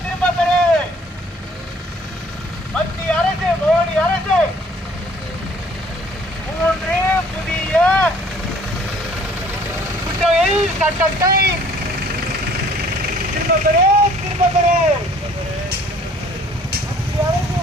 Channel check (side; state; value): both; normal; correlation 0.56